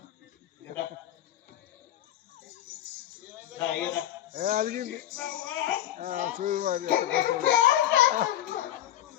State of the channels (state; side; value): quieter; right; 12.3 dB